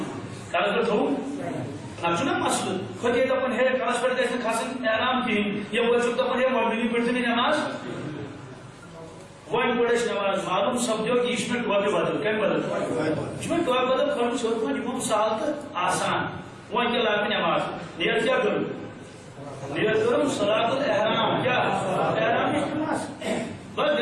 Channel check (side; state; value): both; identical; correlation 1.00